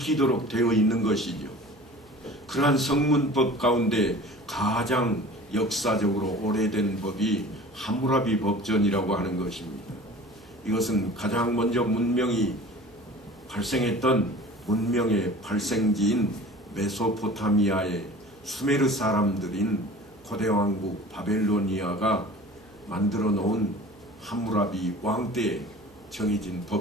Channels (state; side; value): noise; right; hum, 26 dB below the sound